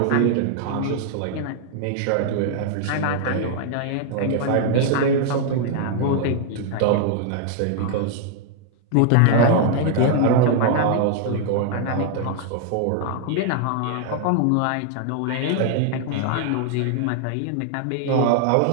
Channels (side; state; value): both; different; correlation 0.00